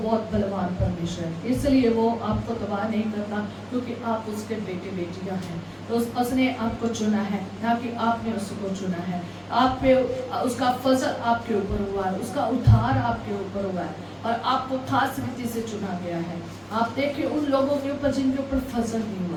बलवान परमेश्वर है, इसलिए वो आपको तबाह नहीं करता, क्योंकि आप उसके बेटे बेटियां हैं। तो उसने आपको चुना है, ना कि आपने उसको चुना है। आप पे उसका फजल आपके ऊपर हुआ है, उसका उद्धार आपके ऊपर हुआ है और आपको खास रीति से चुना गया है। आप देखिए उन लोगों के ऊपर जिनके ऊपर फजल नहीं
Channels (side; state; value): both; identical; correlation 1.00